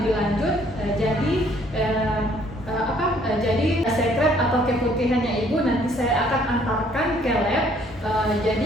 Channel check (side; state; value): both; normal; correlation 0.62